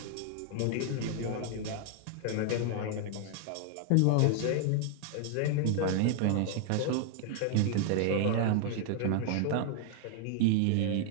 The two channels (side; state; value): both; different; correlation 0.00